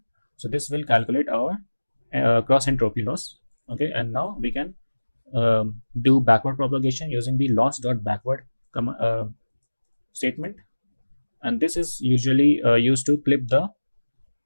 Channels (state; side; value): inverted; both; correlation -1.00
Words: so this will calculate our cross entropy loss. Okay, and now we can do backward propagation using the loss.backward statement, and this is usually used to clip the